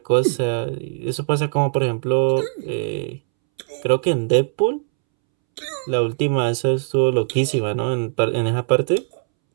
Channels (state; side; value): silent; left; 65 dB below the other